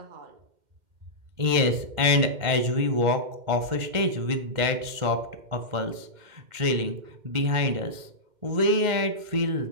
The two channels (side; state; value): left; late; 2.1 ms